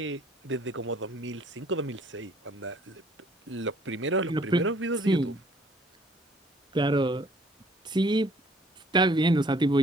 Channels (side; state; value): both; normal; correlation 0.59